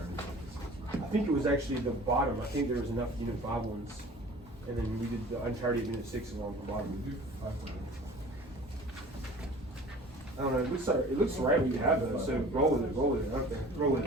of this. I think it was actually the bottom. I think there was enough Unit 5 ones. And then we did the entirety of Unit 6 along the bottom. I don't know. It looks right when you have those. So roll with it. Okay, roll with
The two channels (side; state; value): both; normal; correlation 0.45